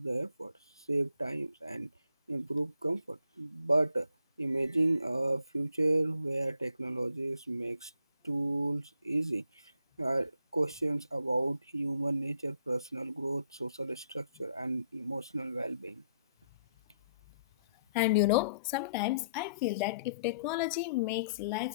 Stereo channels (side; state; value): both; inverted; correlation -0.69